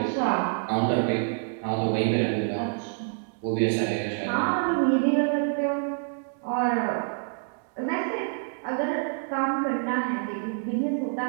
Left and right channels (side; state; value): left; silent; 60 dB below the other